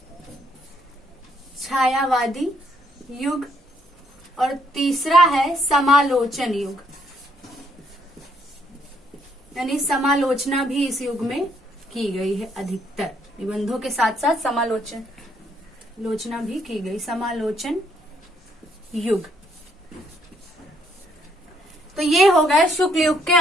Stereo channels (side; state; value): both; normal; correlation 0.71